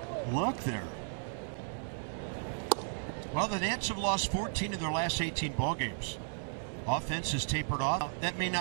look there. Well, the Nats have lost 14 of their last 18 ball games. Offense has tapered off. That may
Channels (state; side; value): silent; left; 55 dB below the other